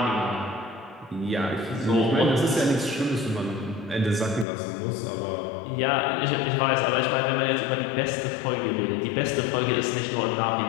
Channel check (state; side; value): drops out; right; at 4.5 s